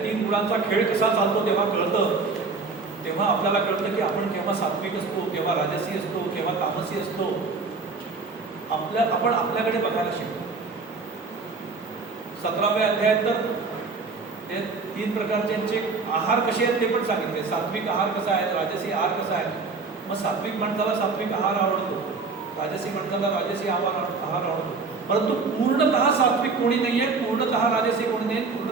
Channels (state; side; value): quieter; left; 4.3 dB